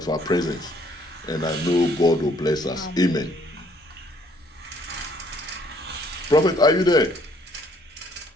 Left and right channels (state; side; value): normal; both; correlation 0.63